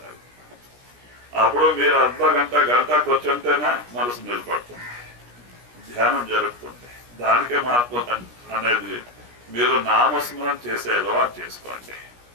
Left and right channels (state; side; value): late; left; 17 ms